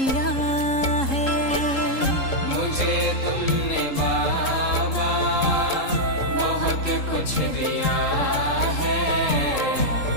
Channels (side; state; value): right; late; 3.7 ms